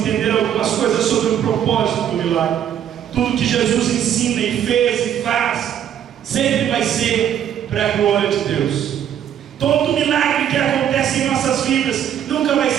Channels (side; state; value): left; quieter; 9.7 dB